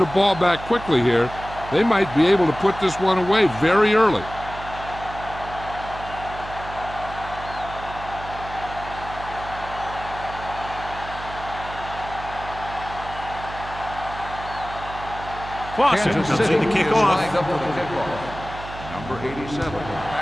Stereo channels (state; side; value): noise; right; hum, 12 dB below the sound